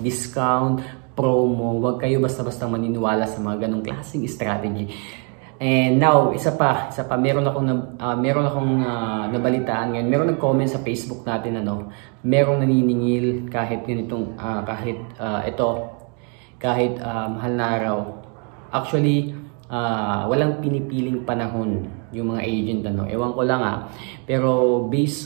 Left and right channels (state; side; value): quieter; left; 38.3 dB